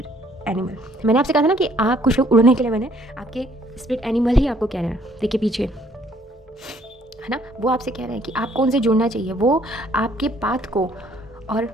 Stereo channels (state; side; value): normal; both; correlation 0.63